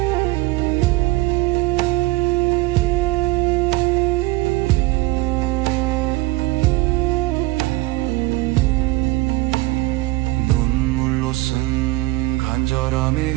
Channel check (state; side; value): quieter; left; 20.1 dB